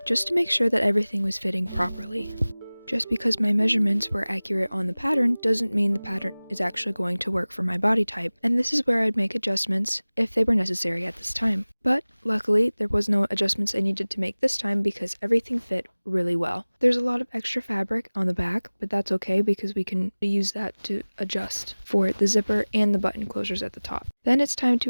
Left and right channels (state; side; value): inverted; both; correlation -1.00